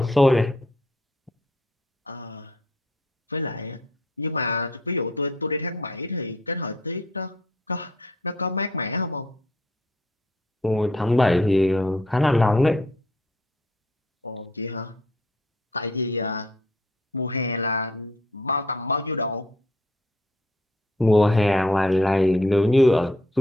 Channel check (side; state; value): both; normal; correlation 0.65